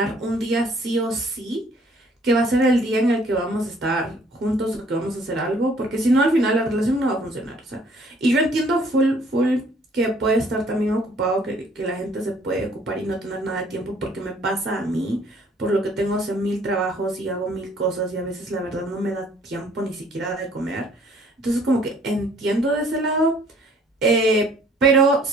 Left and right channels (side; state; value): both; normal; correlation 0.59